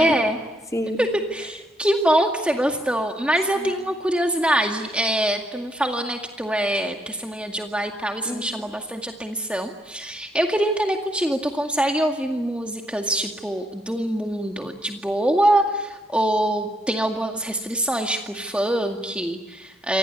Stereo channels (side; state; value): both; normal; correlation 0.74